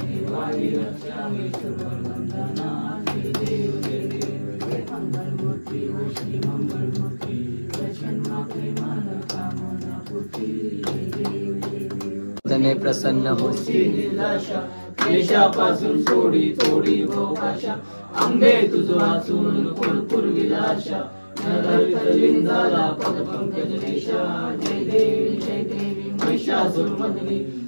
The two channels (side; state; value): both; inverted; correlation -1.00